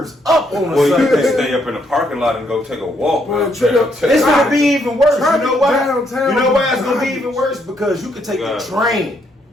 up on Well, the you can Sunday. stay up in the parking lot and go take a walk. Well, man. It's gonna be even worse. You Traffic know why? downtown You know why it's gonna be garbage. even worse? Because you can take God. the train.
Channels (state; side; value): normal; both; correlation 0.73